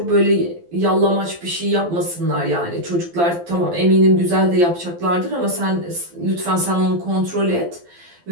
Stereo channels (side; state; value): left; late; 12 ms